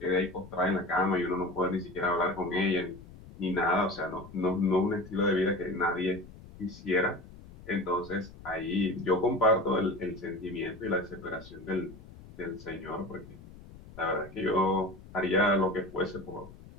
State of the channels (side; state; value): left; noise; rumble, 18 dB below the sound